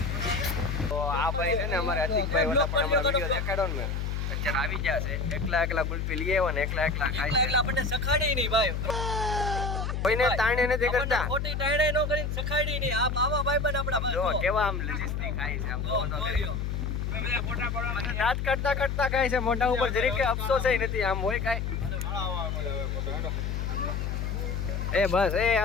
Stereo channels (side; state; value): left; noise; hum, 2 dB below the sound